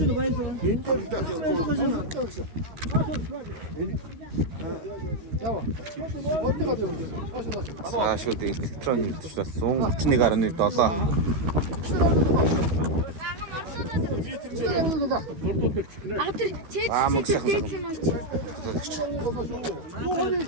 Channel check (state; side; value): late; left; 13 ms